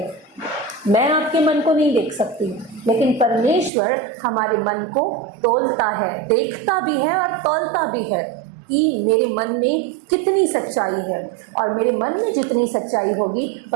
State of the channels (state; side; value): drops out; left; at 3.7 s